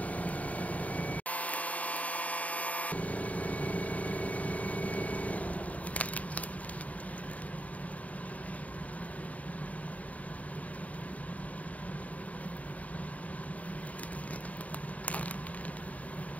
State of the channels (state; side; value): late; right; 0.070 ms